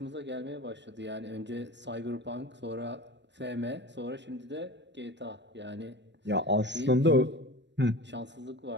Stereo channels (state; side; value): late; left; 0.52 ms